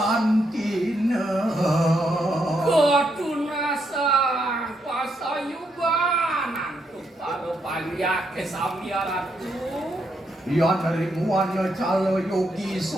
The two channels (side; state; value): both; normal; correlation 0.79